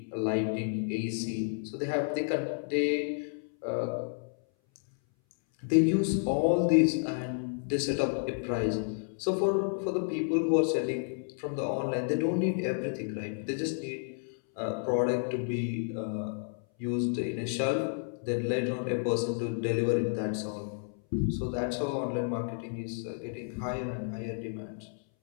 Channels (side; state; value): right; silent; 57 dB below the other